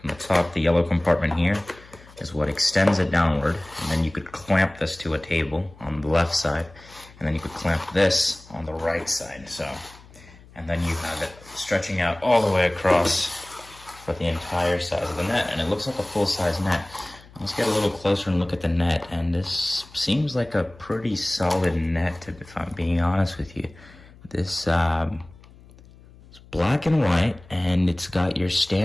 the top, the yellow compartment here is what extends it downward, and then you could clamp this to a table on the left side, and then you could clamp this on the right side. So, and then you have it stretching out all the way across for the entire size of the net, and it looks like a full-size net. Let's get a little closer and look at the net, and this seems like a pretty solid net, if I'm being honest with you. This it's black and white, and it's got your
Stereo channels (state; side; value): noise; left; hum, 23 dB below the sound